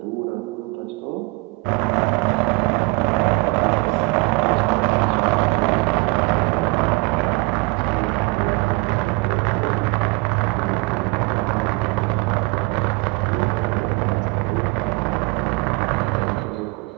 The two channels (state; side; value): quieter; left; 25.2 dB